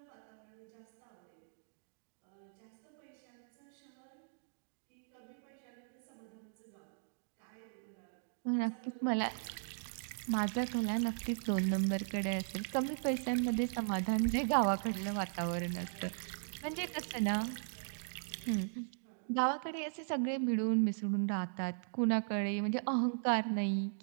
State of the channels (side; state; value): left; silent; digital silence